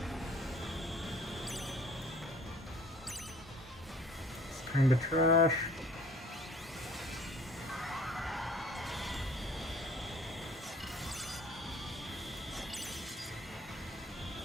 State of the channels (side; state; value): both; normal; correlation 0.53